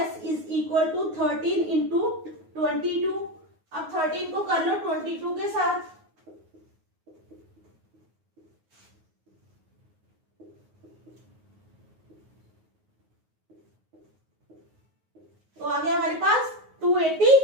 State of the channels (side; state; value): left; late; 9.4 ms